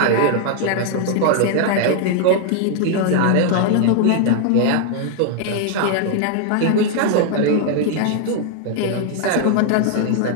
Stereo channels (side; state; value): both; different; correlation 0.00